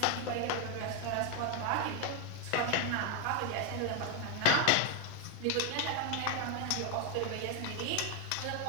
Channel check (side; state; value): both; different; correlation 0.01